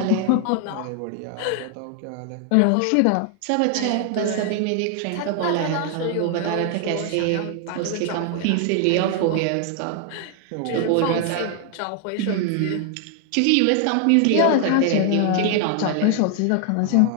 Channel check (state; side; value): different; both; correlation 0.00